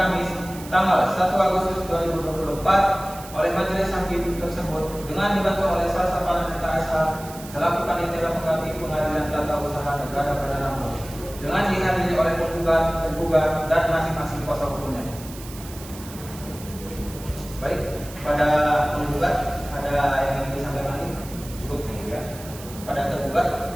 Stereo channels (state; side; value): noise; right; hiss, 16 dB below the sound